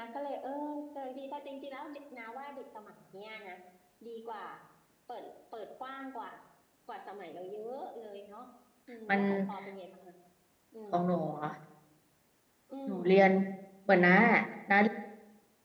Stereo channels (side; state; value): both; identical; correlation 1.00